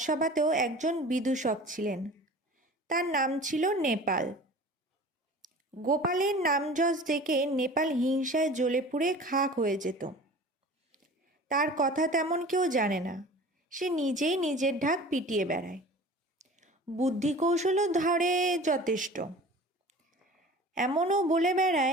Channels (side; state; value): both; normal; correlation 0.41